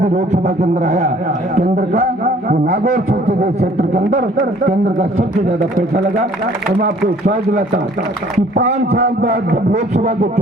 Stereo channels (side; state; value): both; normal; correlation 0.56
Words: लोकसभा के अंदर आया केंद्र का, वो नागौर संसदीय क्षेत्र के अंदर केंद्र का सबसे ज्यादा पैसा लगा। तो मैं आपको विश्वास दिलाता हूँ कि 5 साल बाद जब लोकसभा के